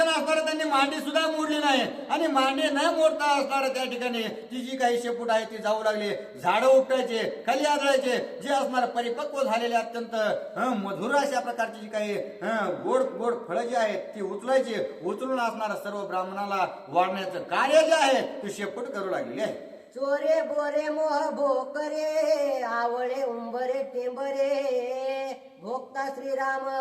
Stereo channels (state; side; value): identical; both; correlation 1.00